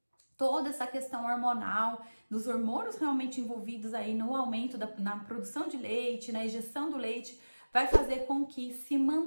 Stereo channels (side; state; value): both; inverted; correlation -1.00